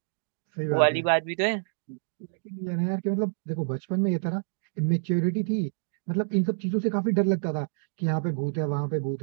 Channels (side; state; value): left; silent; digital silence